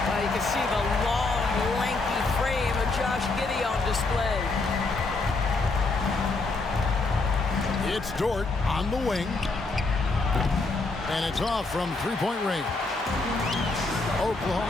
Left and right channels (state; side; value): quieter; right; 3.5 dB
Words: Well, you can see the long, lanky frame of Josh Giddey on display. It's Dort on the wing. And it's off from three-point range.